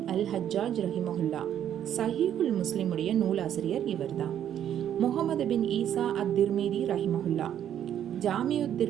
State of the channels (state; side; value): quieter; left; 10.2 dB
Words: அல் ஹஜ்ஜாஜ் ரஹிமஹுல்லா, சஹீஹுல் முஸ்லிமுடைய நூலாசிரியர் இவர்தான். முகமது பின் ஈசா அத்-திர்மிதி ரஹிமஹுல்லா, ஜாமியுத்